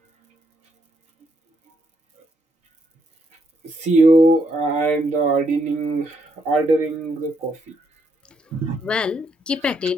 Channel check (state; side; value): normal; both; correlation 0.75